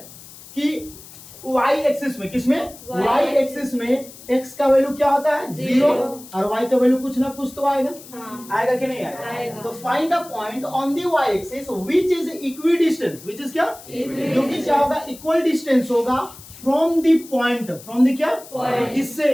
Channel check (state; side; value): noise; left; hiss, 18 dB below the sound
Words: कि y एक्सिस में, किसमें, y एक्सिस में x का वैल्यू क्या होता है 0 और y का वैल्यू कुछ ना कुछ तो आएगा, हाँ, आएगा कि नहीं आएगा, आएगा। तो find a point on the y axis which is equi distance, which is क्या, जो कि क्या होगा इक्वल डिस्टेंस होगा from the point, from the क्या Point. किससे